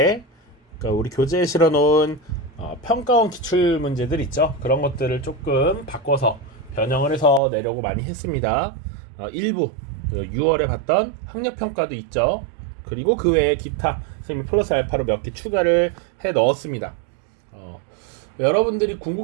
그러니까 우리 교재에 실어놓은 평가원 기출 문제들 있죠. 그런 것들을 조금 바꿔서 변형을 해서 내려고 많이 했습니다. 일부 6월에 봤던 학력평가도 있죠. 그리고 그 외에 기타 선생님이 플러스 알파로 몇 개 추가를 해 넣었습니다. 여러분들이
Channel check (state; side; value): drops out; left; at 7.4 s